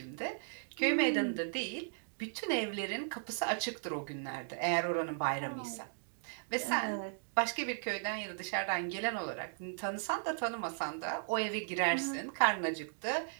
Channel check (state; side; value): silent; left; digital silence